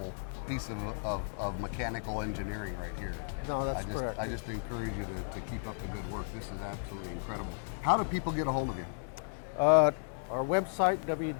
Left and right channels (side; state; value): right; silent; digital silence